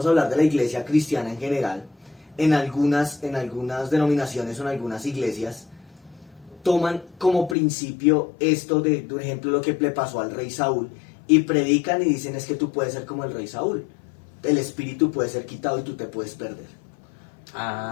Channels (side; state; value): right; drops out; at 7.6 s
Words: a hablar de la iglesia cristiana en general. En algunas denominaciones o en algunas iglesias toman como principio esto de, por ejemplo, lo que le pasó al rey Saúl, y predican y dicen es que tú puedes ser como el rey Saúl. El espíritu puede ser quitado y tú te puedes perder.